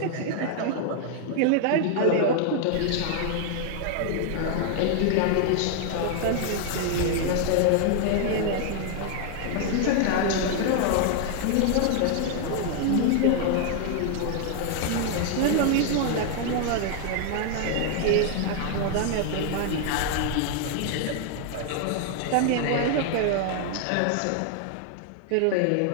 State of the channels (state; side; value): different; both; correlation 0.00